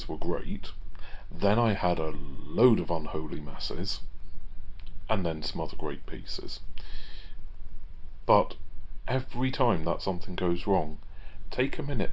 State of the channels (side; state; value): both; identical; correlation 1.00